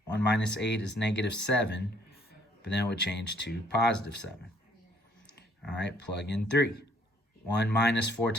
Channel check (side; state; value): both; normal; correlation 0.64